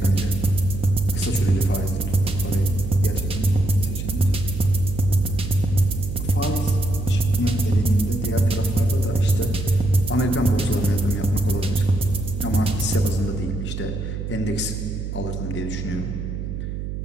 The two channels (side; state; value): right; noise; hum, 5 dB below the sound